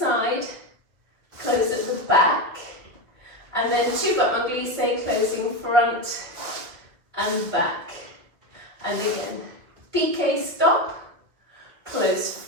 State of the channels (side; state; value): left; late; 2.0 ms